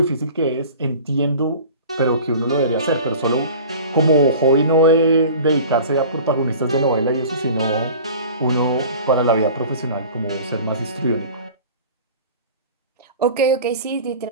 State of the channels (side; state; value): both; inverted; correlation -0.41